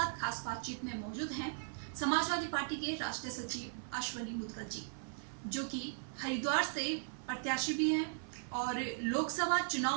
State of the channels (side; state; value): left; silent; 52 dB below the other